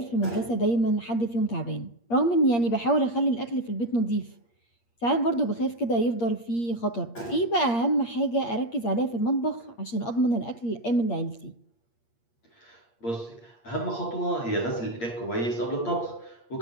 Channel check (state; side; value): late; right; 8.6 ms